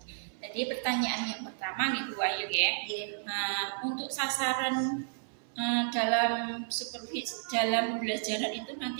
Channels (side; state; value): left; silent; 56 dB below the other